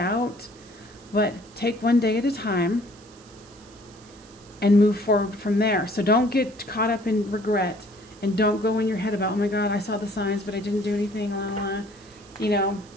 but take one day at a time and move forward from there. So don't get caught up in regret, and don't go in your head about, oh my God, I saw the signs, but I didn't do anything, blah, blah. You know,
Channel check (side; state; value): right; noise; hiss, 25 dB below the sound